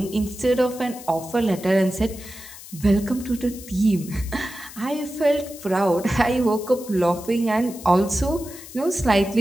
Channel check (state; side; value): noise; left; hiss, 16 dB below the sound